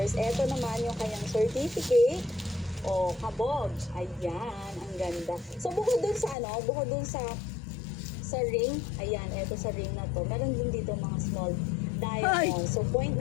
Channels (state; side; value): drops out; right; at 6.4 s